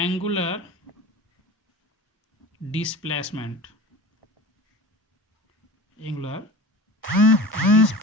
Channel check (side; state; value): both; normal; correlation 0.34